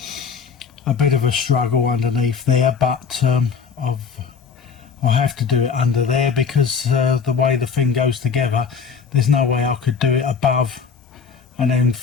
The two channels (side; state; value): right; quieter; 6.0 dB